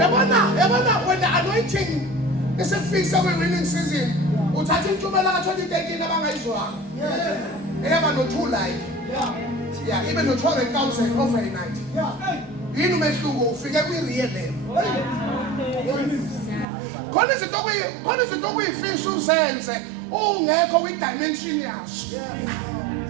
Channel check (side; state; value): left; drops out; at 16.7 s